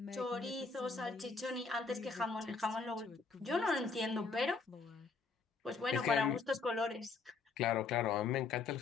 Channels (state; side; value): quieter; right; 4.5 dB